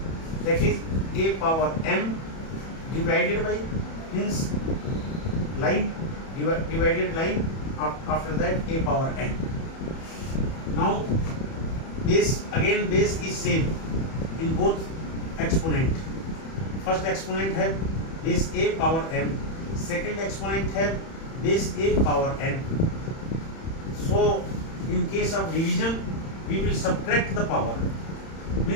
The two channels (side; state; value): right; late; 31 ms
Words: that is a power m divided by means line divided line, after that a power n. Now base, again base is same in both exponent. First exponent have base a power m, second exponent have base a power n. So in case of division we will subtract the power,